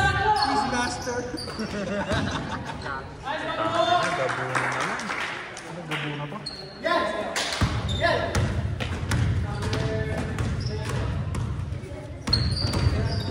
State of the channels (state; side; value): identical; both; correlation 1.00